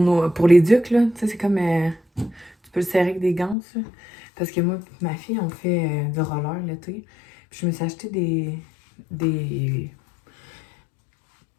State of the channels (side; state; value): right; drops out; at 3.6 s